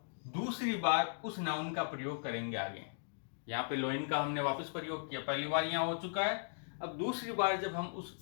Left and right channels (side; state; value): right; silent; digital silence